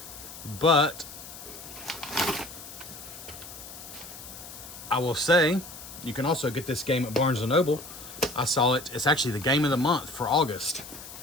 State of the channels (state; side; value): noise; left; hiss, 14 dB below the sound